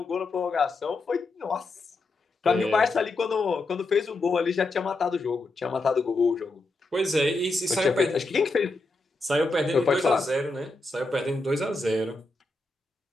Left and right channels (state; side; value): quieter; right; 3.1 dB